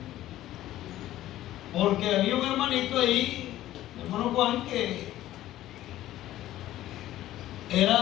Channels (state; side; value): quieter; right; 14.1 dB